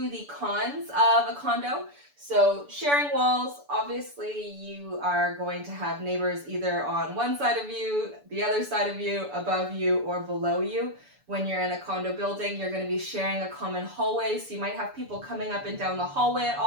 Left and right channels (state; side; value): late; left; 6.9 ms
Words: the cons of a condo. So sharing walls, obviously you are going to have neighbors either on one side of you, the other side of you, above you, or below you. When you're in a condo building, you're going to be sharing a common hallway, so you might have people coming up and down the hallway at